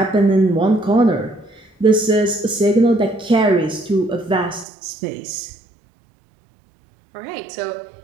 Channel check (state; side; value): drops out; left; at 4.7 s